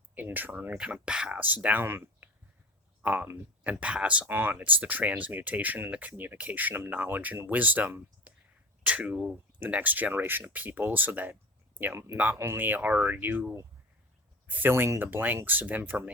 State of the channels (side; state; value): both; normal; correlation 0.32